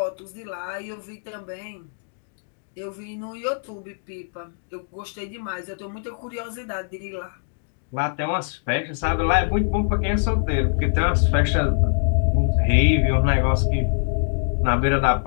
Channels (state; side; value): silent; right; digital silence